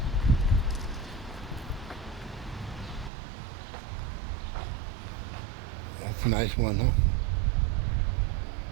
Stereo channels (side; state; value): left; drops out; at 3.1 s